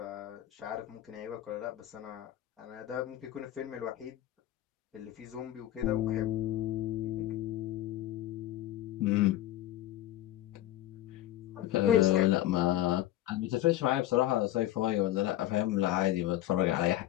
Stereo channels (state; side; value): quieter; right; 13.8 dB